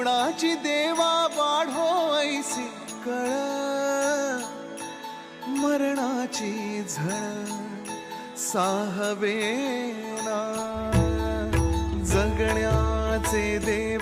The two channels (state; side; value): identical; both; correlation 1.00